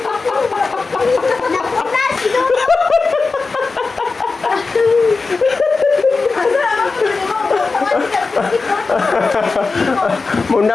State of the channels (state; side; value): quieter; right; 4.1 dB